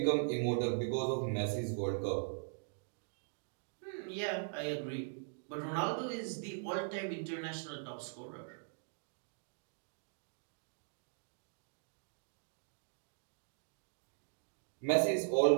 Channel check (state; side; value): silent; left; digital silence